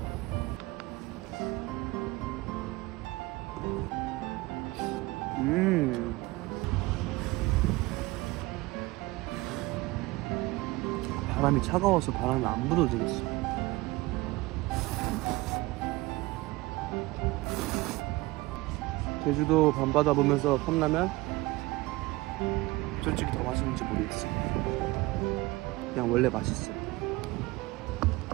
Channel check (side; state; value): left; quieter; 20.7 dB